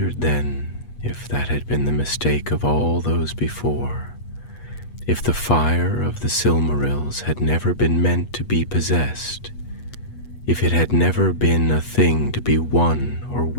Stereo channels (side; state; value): right; late; 8.3 ms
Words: then if that had been the mistake of all those before, if the fire of the Silmarils had never been meant to be possessed, if it had never been a thing to be won or